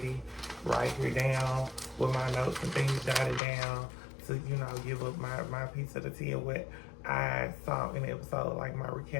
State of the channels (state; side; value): drops out; right; at 3.4 s